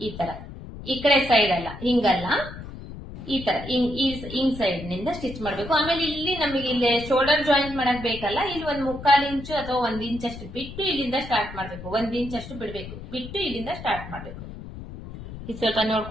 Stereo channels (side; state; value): left; noise; rumble, 12 dB below the sound